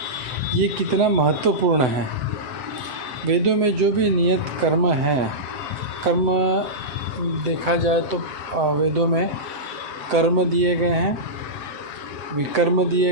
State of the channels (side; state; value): left; late; 7.9 ms